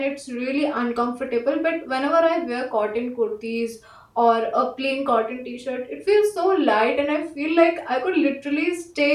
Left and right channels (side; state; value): both; identical; correlation 1.00